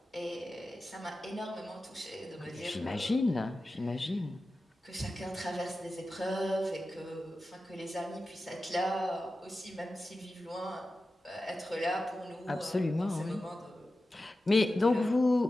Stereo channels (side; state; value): both; normal; correlation 0.93